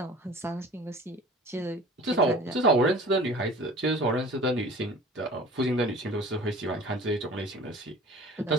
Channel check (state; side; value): normal; both; correlation 0.43